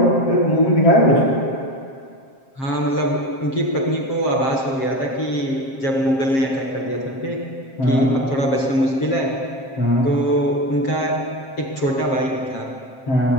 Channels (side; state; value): right; late; 7.5 ms